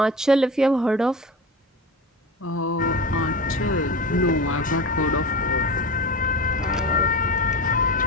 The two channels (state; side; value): normal; both; correlation 0.28